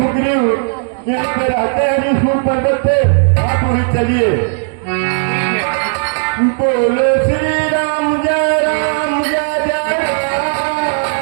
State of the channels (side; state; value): left; silent; digital silence